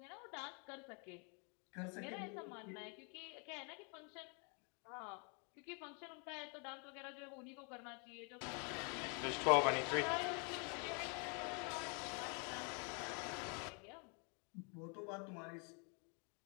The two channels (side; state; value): right; quieter; 36.4 dB